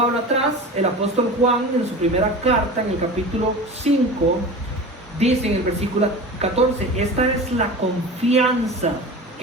atrás, el apóstol Juan, en su primera carta, en el capítulo 5, dice en el versículo 14, esta es la confianza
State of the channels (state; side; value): normal; both; correlation 0.33